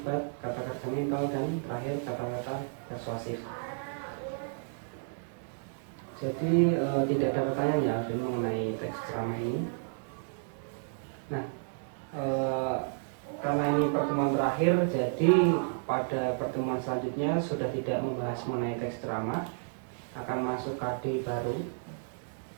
kata kerja mental, dan terakhir kata-kata persuasif. Jadi tidak ada pertanyaan ya Alvin mengenai teks ceramah ini. Nah, karena ini pertemuan terakhir, jadi pada pertemuan selanjutnya sudah tidak membahas mengenai teks ceramah, akan masuk KD baru.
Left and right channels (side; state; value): left; silent; digital silence